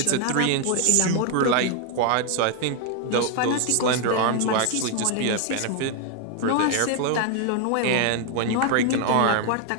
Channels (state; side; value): different; both; correlation 0.01